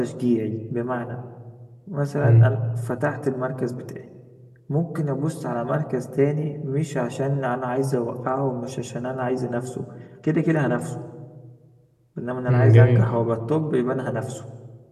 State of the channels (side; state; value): both; identical; correlation 1.00